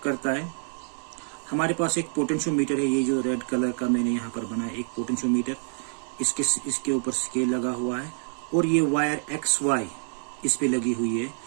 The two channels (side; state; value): left; silent; 56 dB below the other